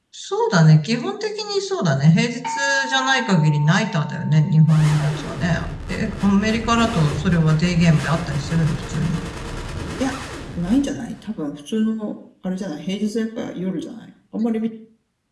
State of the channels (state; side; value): identical; both; correlation 1.00